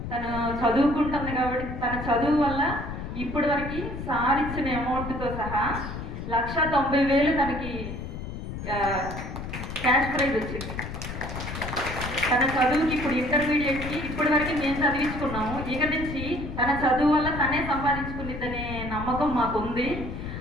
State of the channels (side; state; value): left; noise; rumble, 7 dB below the sound